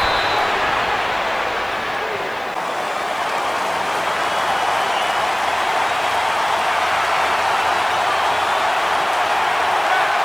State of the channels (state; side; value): noise; right; hiss, 27 dB below the sound